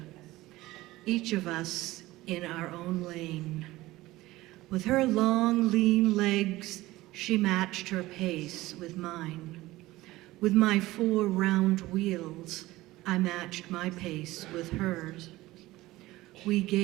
each of us in our own lane. With her long, lean legs, she matched her pace with mine. With my 4 round wheels, I matched my pace with hers. We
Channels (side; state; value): left; quieter; 18.0 dB